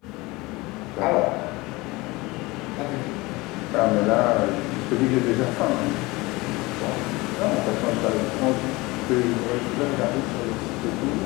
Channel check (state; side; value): quieter; right; 22.4 dB